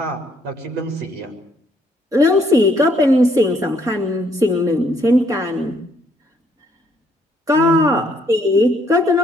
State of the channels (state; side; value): normal; both; correlation 0.68